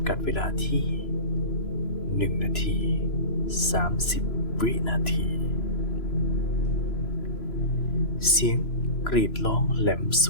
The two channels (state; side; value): late; right; 3.0 ms